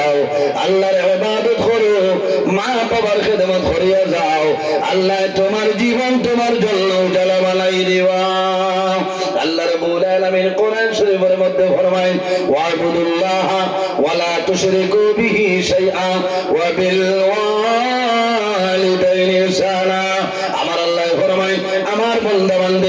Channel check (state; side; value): identical; both; correlation 1.00